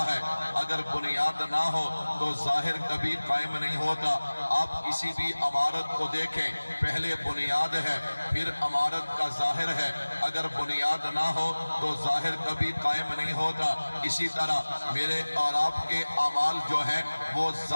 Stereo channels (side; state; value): both; inverted; correlation -1.00